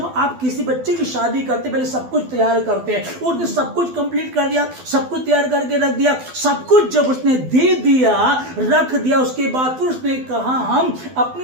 आप किसी बच्चे की शादी करते पहले सब कुछ तैयार करते हैं, उसने सब कुछ कंप्लीट कर दिया, सब कुछ तैयार करके रख दिया। सब कुछ जब उसने दे दिया, रख दिया, उसके बाद फिर उसने कहा हम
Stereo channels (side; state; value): left; late; 12 ms